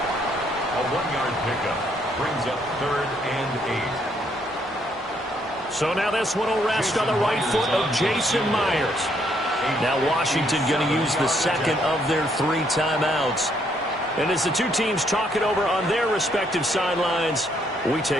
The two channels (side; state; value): both; normal; correlation 0.71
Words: 1-yard pickup brings up 3rd and 8. So now this one will rest on the right foot of Jason Myers. Now Washington going to use the second of their 3 timeouts. And as the two teams talk it over on their respective sidelines, we